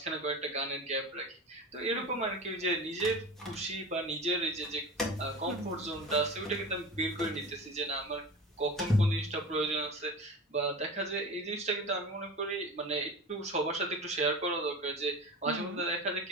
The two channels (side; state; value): both; normal; correlation 0.32